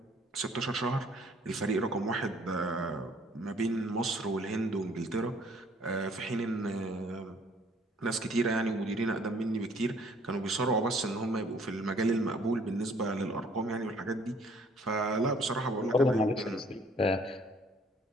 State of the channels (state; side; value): normal; both; correlation 0.59